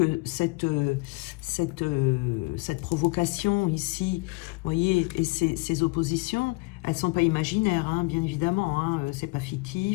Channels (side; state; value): right; quieter; 27.7 dB